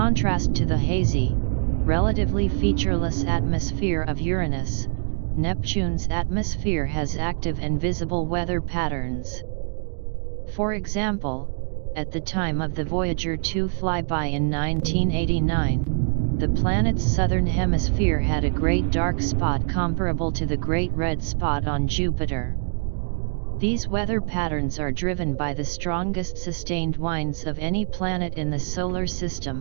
to the hazy, relatively featureless atmosphere of Uranus, Neptune's atmosphere has active and visible weather patterns. For example, at the time of the Voyager 2 flyby in 1989, the planet's southern hemisphere had a great dark spot comparable to the Great Red Spot on Jupiter. These weather patterns are driven by the strongest sustained winds of any planet in the Solar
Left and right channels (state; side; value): silent; left; 62 dB below the other